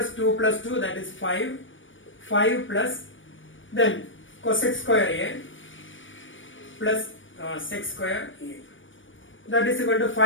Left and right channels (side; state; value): right; late; 0.56 ms